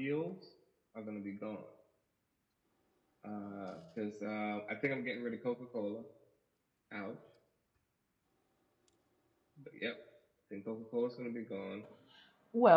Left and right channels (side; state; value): both; identical; correlation 1.00